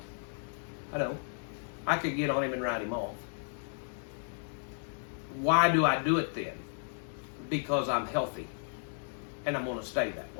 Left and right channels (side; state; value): right; silent; digital silence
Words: I don't. I could get on him and ride him off. Why do I do it then? Because I'm healthy and I'm going to stay that